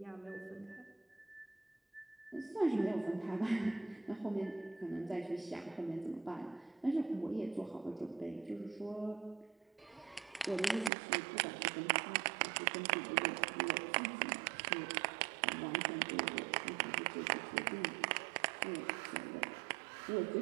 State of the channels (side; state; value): left; drops out; at 10.9 s